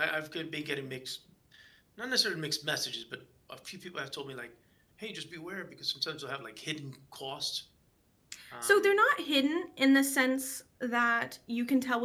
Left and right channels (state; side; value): identical; both; correlation 1.00